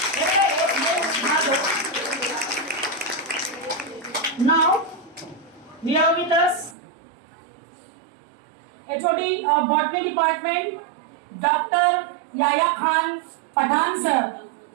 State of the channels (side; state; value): left; drops out; at 6.8 s